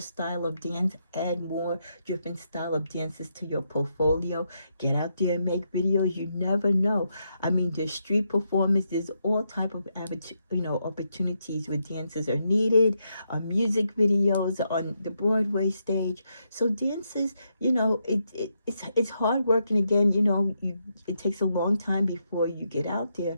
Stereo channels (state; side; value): inverted; both; correlation -0.80